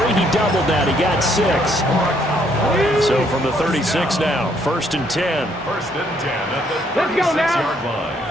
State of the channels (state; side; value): normal; both; correlation 0.69